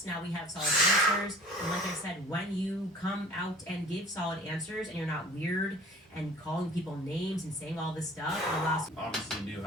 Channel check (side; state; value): both; normal; correlation 0.46